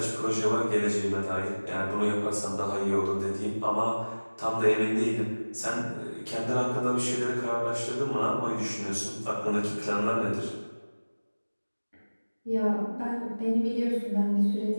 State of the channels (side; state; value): both; inverted; correlation -1.00